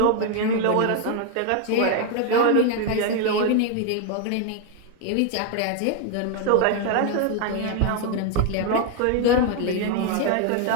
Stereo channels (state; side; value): different; both; correlation 0.01